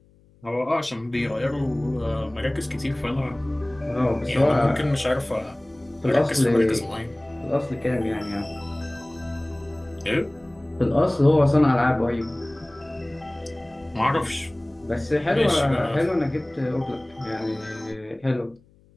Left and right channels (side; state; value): left; noise; hum, 30 dB below the sound